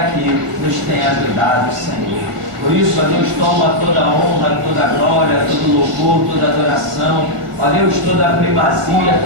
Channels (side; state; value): left; late; 1.5 ms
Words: nos tem ajudado o Senhor. Por isso, ó Deus, toma toda a honra, toda a glória, todo o louvor, toda a adoração. Ó Deus, toda a primazia,